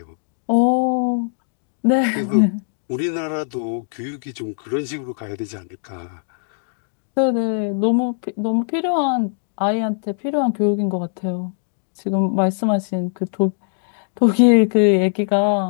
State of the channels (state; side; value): silent; right; digital silence